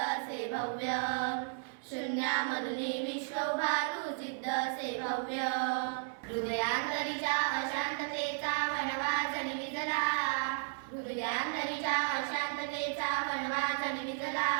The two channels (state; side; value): silent; left; 55 dB below the other